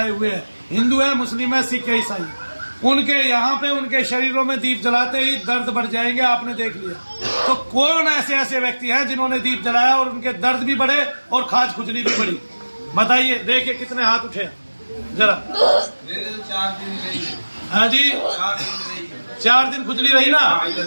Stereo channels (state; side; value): inverted; both; correlation -1.00